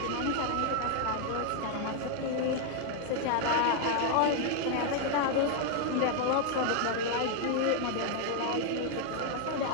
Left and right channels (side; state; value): both; different; correlation 0.00